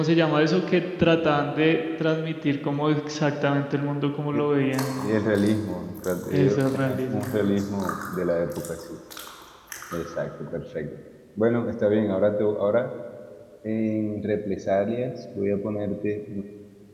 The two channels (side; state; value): both; identical; correlation 1.00